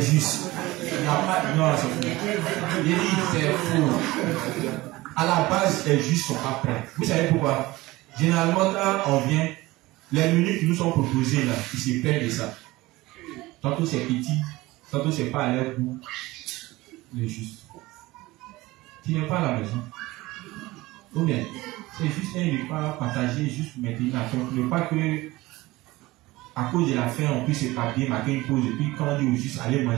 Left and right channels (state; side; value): quieter; left; 19.6 dB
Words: Il n'y a pas. Non, c'est faux. Il dit c'est faux. À la base, les justes ne sont pas prêts. Vous savez pourquoi? Généralement, quand on vient, les menus qui nous sont proposés là, ils se plaignent de ça. Tantôt c'est petit, tantôt c'est pas à leur goût. Les justes. Tu n'es pas à la maison. Ou bien, c'est juste un repas partagé, juste pour maintenir la faim. Ne pas que, à cause de la faim, on puisse se papier, marquer une pause, et puis quand on dit aux justes, allez